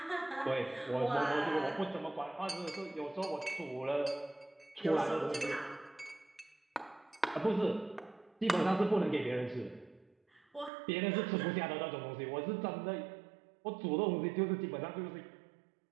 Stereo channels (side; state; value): left; drops out; at 10.7 s